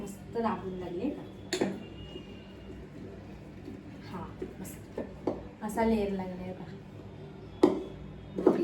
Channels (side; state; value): both; identical; correlation 1.00